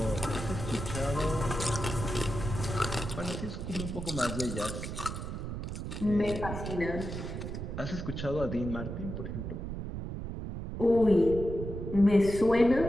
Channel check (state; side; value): noise; right; rumble, 6 dB below the sound